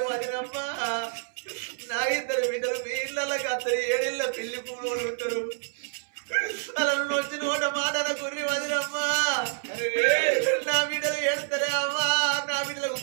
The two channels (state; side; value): silent; left; 60 dB below the other